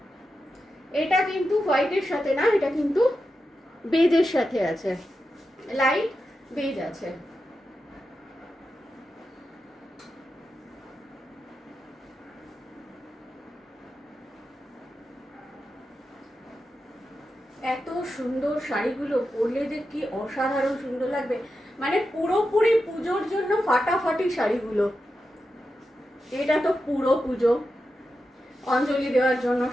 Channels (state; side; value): normal; both; correlation 0.89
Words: এটা কিন্তু হোয়াইটের সাথে না, এটা কিন্তু বেজের সাথে আছে, লাইট বেজ আছে। এত সুন্দর শাড়িগুলো পরলে যে কি অসাধারণ সুন্দর লাগবে, মানে পুরোপুরি পুজোর জন্য ফাটাফাটি শাড়িগুলো। এটা তো পুরো পুজো, অঞ্জলি দেওয়ার জন্য